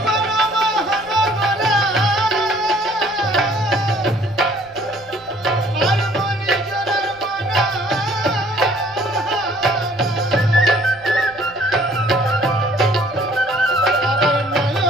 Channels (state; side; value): noise; right; rumble, 27 dB below the sound